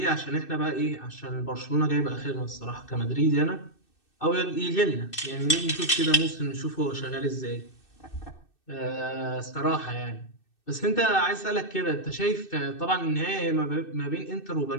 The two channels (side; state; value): right; late; 2.6 ms